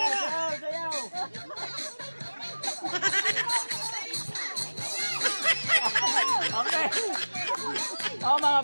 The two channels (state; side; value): inverted; both; correlation -1.00